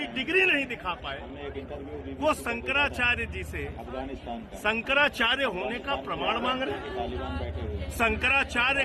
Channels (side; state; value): both; identical; correlation 1.00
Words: डिग्री नहीं दिखा पाए वो शंकराचार्य जी से शंकराचार्य होने का प्रमाण मांग रहे। शंकराचार्य